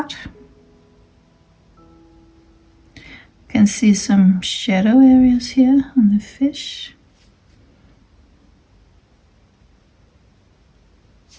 You can see some shadow areas here on the fish.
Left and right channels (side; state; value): both; identical; correlation 1.00